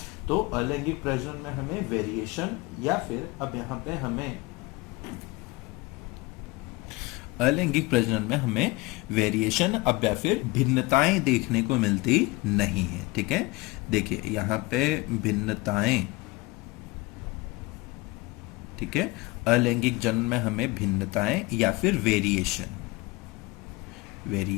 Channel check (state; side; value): quieter; right; 22.7 dB